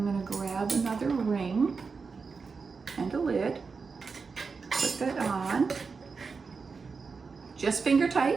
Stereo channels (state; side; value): quieter; left; 4.9 dB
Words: gonna grab another ring and a lid, put that on, just finger